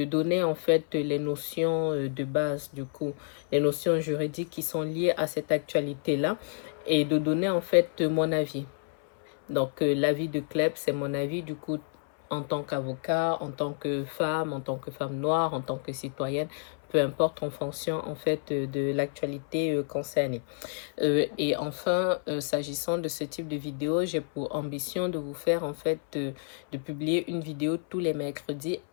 donner en fait les notions de base, du coup les notions juridiques qui sont liées à cette actualité là, et de donner en fait mon avis. Donc, l'avis de Kleb, c'est mon avis du coup en tant qu'avocat, en tant que femme noire, en tant que citoyenne, peu importe en fonction en fait de l'actualité concernée. Et enfin, s'agissant de ce type de vidéo, j'ai pour ambition de vous faire en fait de publier une vidéo tous les mercredis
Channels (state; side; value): silent; right; 58 dB below the other